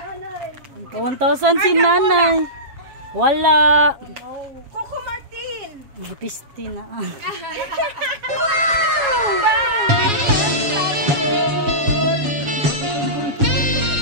1,000 si nanay. Wala. Coco Martin. Butisti na.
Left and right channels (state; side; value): late; left; 7.2 ms